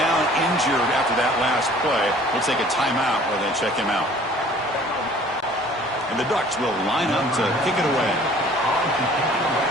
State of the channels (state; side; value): normal; both; correlation 0.52